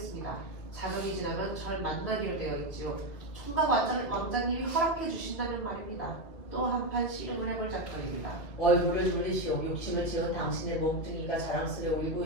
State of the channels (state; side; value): late; right; 2.3 ms